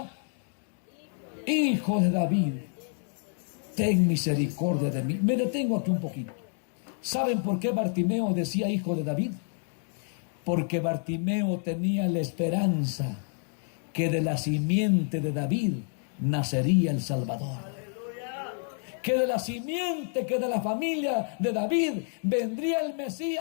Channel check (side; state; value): right; silent; 56 dB below the other